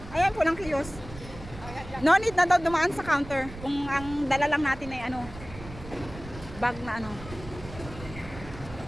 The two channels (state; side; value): noise; right; rumble, 14 dB below the sound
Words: ayan pulang kiosk. No need na daw dumaan sa counter kung ang dala lang natin ay ano, bag na ano.